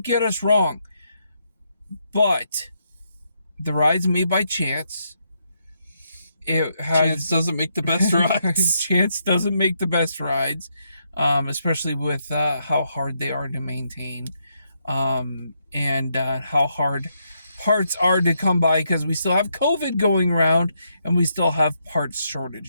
get us wrong. But the ride's made by Chance. Chance doesn't make the best rides. Chance doesn't make the best rides, especially with how hard they are to maintain, and how hard parts are to come by, because we still have COVID going around and we still have parts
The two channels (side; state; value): both; inverted; correlation -0.78